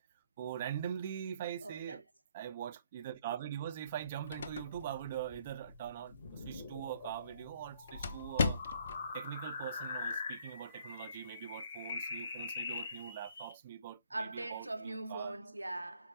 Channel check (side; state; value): both; inverted; correlation -0.64